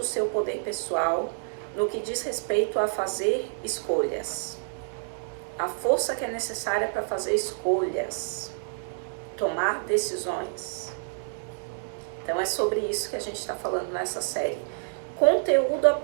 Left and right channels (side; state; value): left; silent; digital silence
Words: seu poder pessoal no que diz respeito a fazer escolhas. A força que é necessária para fazer escolhas, tomar decisões. Então é sobre isso que a gente está falando nessa série. Conteúdo